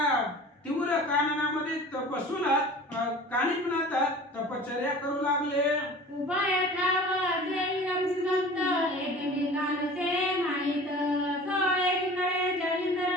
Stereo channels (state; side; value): normal; both; correlation 0.41